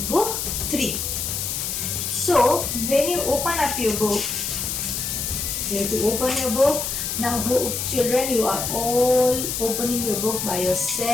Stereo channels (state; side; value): noise; left; hiss, 2 dB below the sound